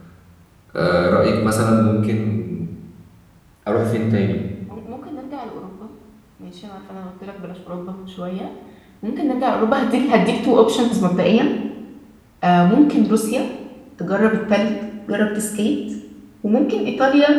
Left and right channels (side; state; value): both; identical; correlation 1.00